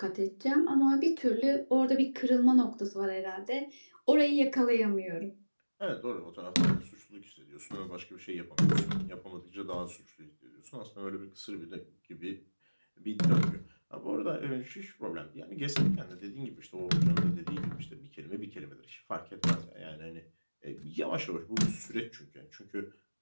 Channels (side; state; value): both; inverted; correlation -1.00